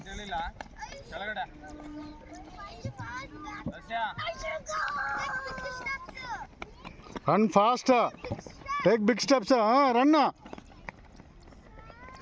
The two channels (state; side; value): identical; both; correlation 1.00